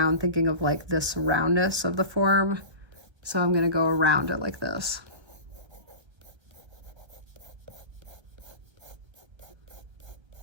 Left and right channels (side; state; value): left; late; 1.3 ms